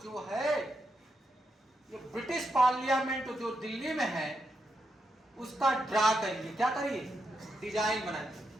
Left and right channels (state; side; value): normal; both; correlation 0.83